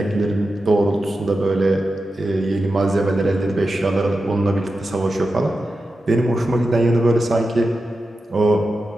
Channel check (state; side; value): normal; both; correlation 0.91